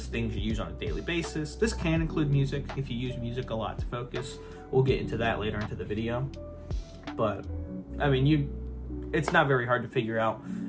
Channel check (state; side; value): identical; both; correlation 1.00